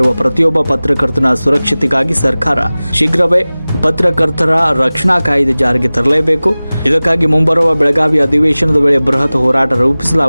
ಪ್ರತಿಯೊಬ್ಬ ಪತ್ರಕರ್ತನ ಸುರಕ್ಷತೆಗಾಗಿ ಸರ್ಕಾರ ಶೀಘ್ರವೇ ಪತ್ರಕರ್ತರ ರಕ್ಷಣಾ ಕಾಯ್ದೆ ಜಾರಿಗೆ ತರಲೇಬೇಕು. ಇದಕ್ಕಾಗಿ ಮುಂಬರುವ ಬೆಳಗಾವಿ ಅಧಿವೇಶನದ ವೇಳೆ ಬೃಹತ್ ಹೋರಾಟ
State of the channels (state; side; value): inverted; both; correlation -0.98